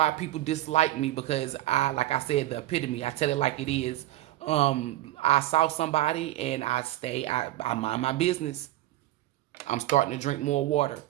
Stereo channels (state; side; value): quieter; left; 15.6 dB